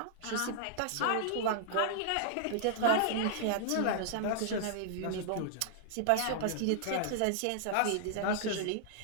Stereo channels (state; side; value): different; both; correlation -0.01